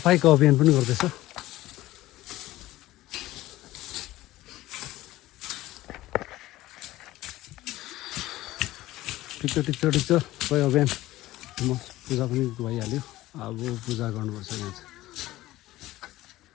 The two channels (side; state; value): right; quieter; 16.6 dB